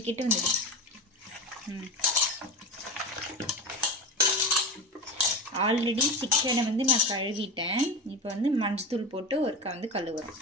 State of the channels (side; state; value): both; normal; correlation 0.24